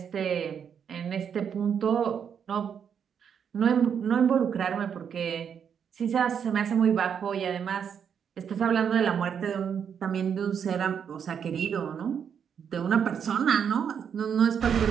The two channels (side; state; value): left; quieter; 7.6 dB